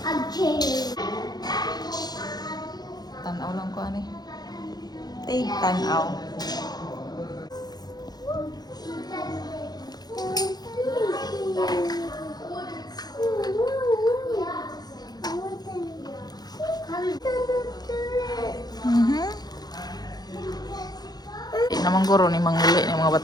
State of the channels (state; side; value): late; right; 0.19 ms